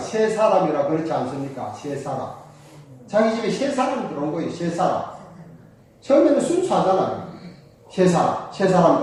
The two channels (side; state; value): both; identical; correlation 1.00